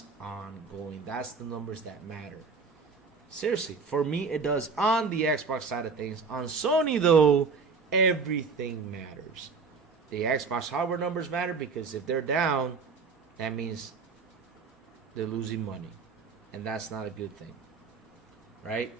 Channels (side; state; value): left; quieter; 4.9 dB